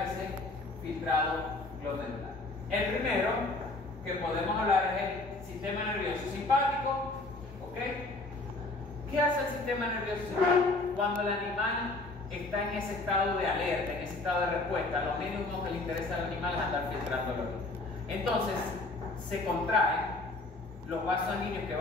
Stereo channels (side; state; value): right; quieter; 3.1 dB